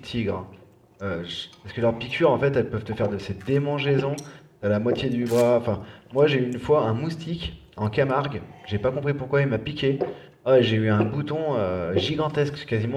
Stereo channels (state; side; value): identical; both; correlation 1.00